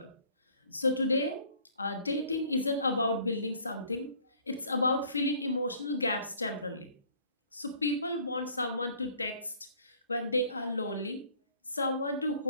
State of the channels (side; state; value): both; inverted; correlation -0.57